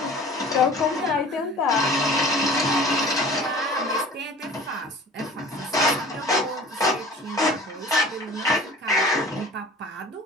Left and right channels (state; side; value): normal; both; correlation 0.44